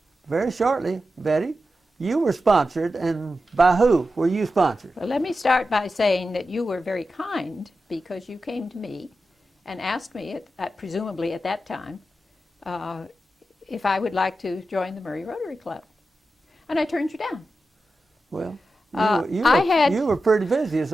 very shortly, Betty, you were sponsored, and by who were you sponsored? Well, let me start by saying that you were very kind because you came to me and asked me, presumably at that time, if I would like to join the Murray Rotary Club. And I turned you down. Well, you were pretty busy, as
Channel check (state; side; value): normal; both; correlation 0.91